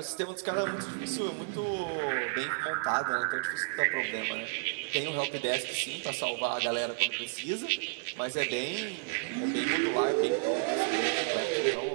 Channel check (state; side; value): silent; left; 57 dB below the other